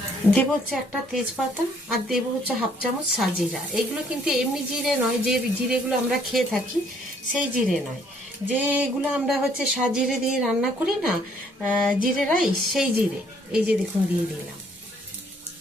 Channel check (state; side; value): normal; both; correlation 0.64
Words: দেবো হচ্ছে একটা তেজপাতা আর দেবো হচ্ছে 1/2 চামচ সাজিরা। এগুলো কিন্তু এমনি জিরে নয়, যে জিরেগুলো আমরা খেয়ে থাকি সেই জিরে নয়, যেগুলো আমরা হচ্ছে সাজিরে দিয়ে রান্না করি না, জিরে রাইস, সেই জিরে। এই যে দেখুন দিয়ে দিলাম।